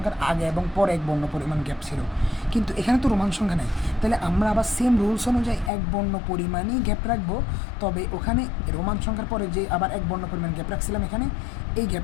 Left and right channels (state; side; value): drops out; right; at 5.7 s